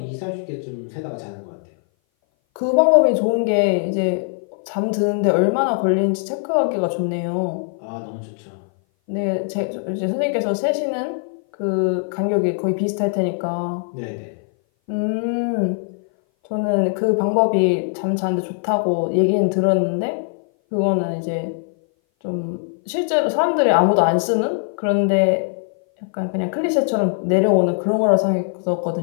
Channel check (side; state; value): right; silent; 58 dB below the other